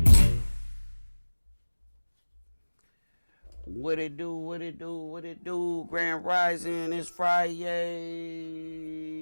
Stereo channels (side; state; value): both; inverted; correlation -1.00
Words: What it do, what it do, what it do? Grand Rising, it's Friday.